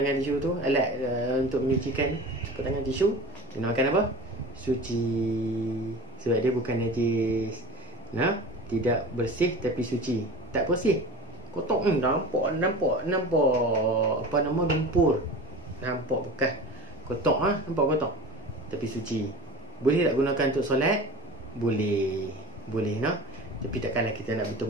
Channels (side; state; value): both; normal; correlation 0.35